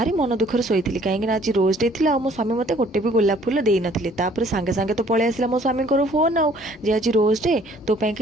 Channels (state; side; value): normal; both; correlation 0.58